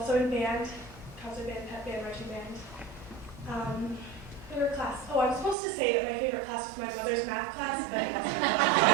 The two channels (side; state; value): left; drops out; at 5.6 s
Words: in band, concert band, pep band, marching band. Favorite class? Oh, I was supposed to say that my favorite class was my mother's math class, but